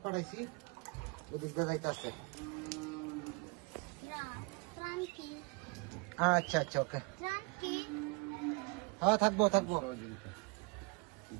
আচ্ছা আচ্ছা, ওকে, হ্যাঁ থাকবো থাকবো,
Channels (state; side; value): quieter; left; 29.8 dB